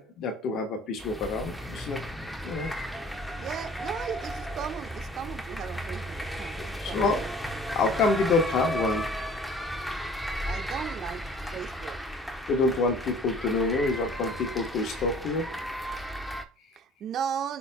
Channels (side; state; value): both; normal; correlation 0.51